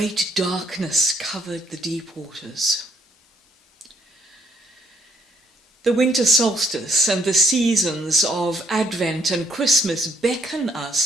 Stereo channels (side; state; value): both; normal; correlation 0.69